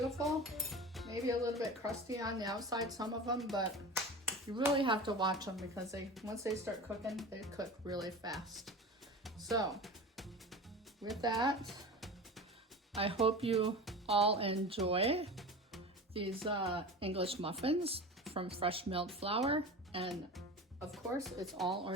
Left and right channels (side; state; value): both; normal; correlation 0.32